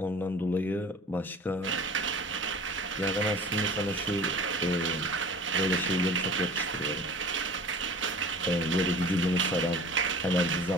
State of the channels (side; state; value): both; normal; correlation 0.42